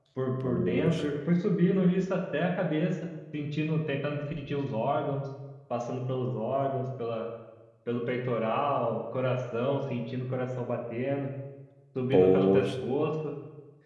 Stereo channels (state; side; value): identical; both; correlation 1.00